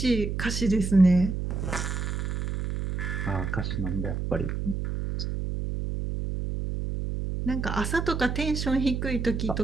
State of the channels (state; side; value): noise; right; hum, 3 dB below the sound